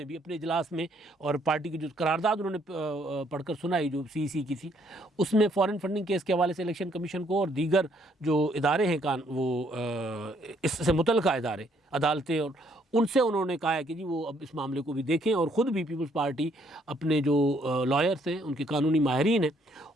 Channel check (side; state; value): both; normal; correlation 0.68